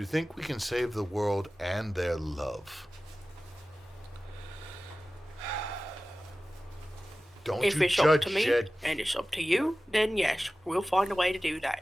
think we can save the world and their love? Don't If you it's up judge to me Jed. and it's up to you, then yes, we'll find a way to do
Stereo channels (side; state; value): both; normal; correlation 0.96